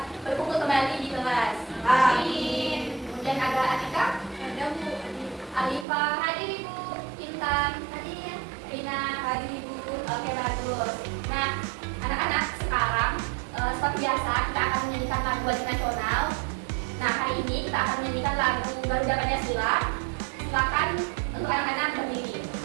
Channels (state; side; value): drops out; left; at 5.9 s